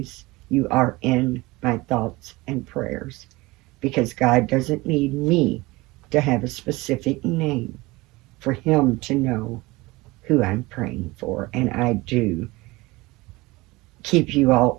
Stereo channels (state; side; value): quieter; left; 21.8 dB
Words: you are in my thoughts and prayers, because God doesn't need me to have a specific name for Him to know who I'm praying for. And I do keep you all